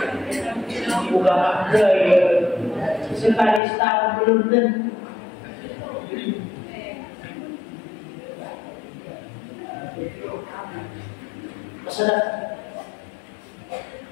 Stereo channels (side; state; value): right; drops out; at 3.6 s